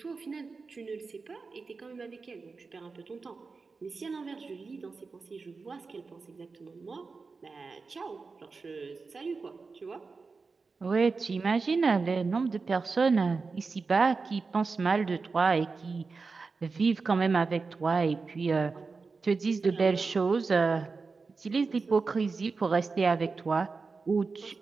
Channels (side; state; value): left; quieter; 4.4 dB